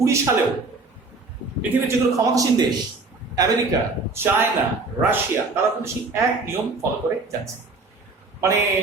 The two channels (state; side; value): quieter; left; 3.7 dB